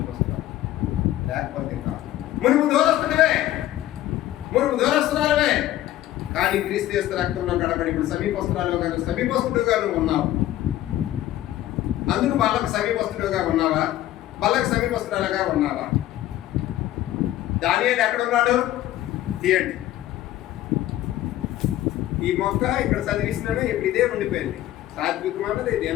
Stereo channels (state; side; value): quieter; right; 14.0 dB